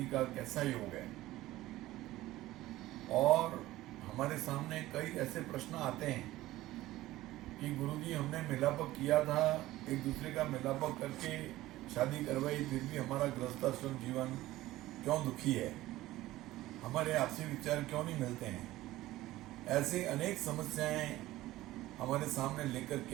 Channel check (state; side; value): quieter; left; 16.6 dB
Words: का कैसा योग है। और हमारे सामने कई ऐसे प्रश्न आते हैं कि गुरुजी हमने मिलापक किया था, एक दूसरे का मिलापक करके शादी करवाई, फिर भी हमारा गृहस्थाश्रम जीवन क्यों दुखी है, हमारे आपसी विचार क्यों नहीं मिलते हैं। ऐसे अनेक समस्याएं हमारे सामने लेकर